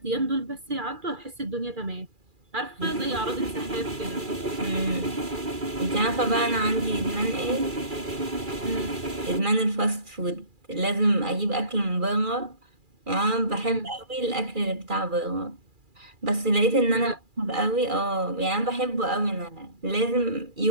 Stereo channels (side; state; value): left; late; 2.4 ms